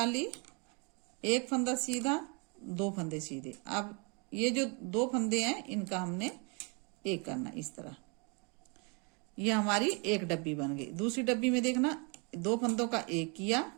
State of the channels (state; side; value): quieter; left; 33.3 dB